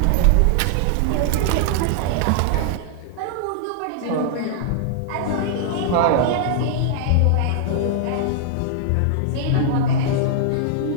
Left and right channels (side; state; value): both; different; correlation -0.01